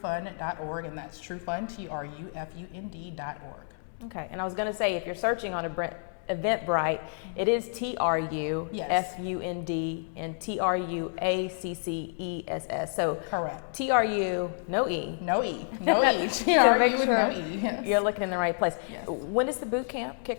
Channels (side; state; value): right; silent; digital silence